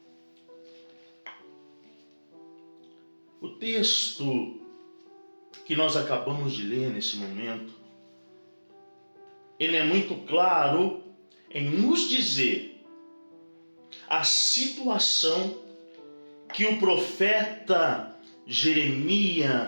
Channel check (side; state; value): both; inverted; correlation -1.00